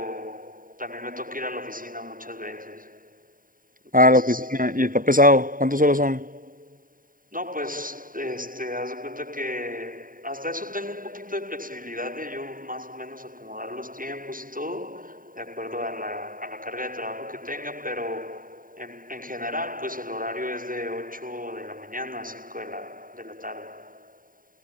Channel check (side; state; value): left; late; 0.40 ms